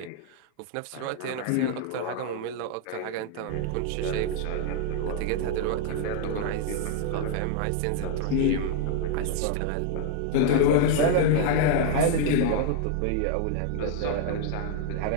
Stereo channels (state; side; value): different; both; correlation 0.00